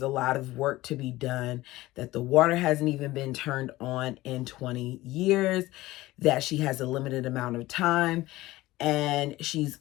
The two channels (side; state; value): right; quieter; 17.9 dB